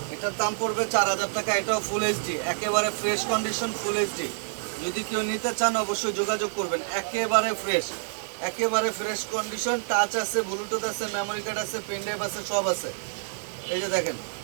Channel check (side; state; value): left; silent; digital silence